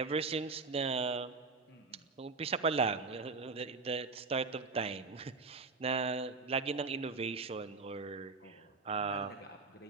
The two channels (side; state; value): left; quieter; 4.1 dB